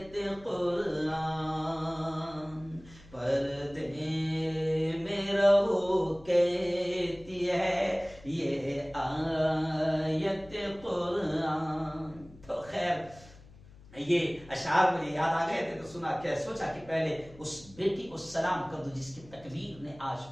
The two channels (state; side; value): noise; left; hum, 22 dB below the sound